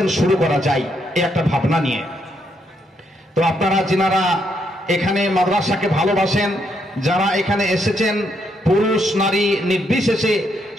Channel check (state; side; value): normal; both; correlation 0.76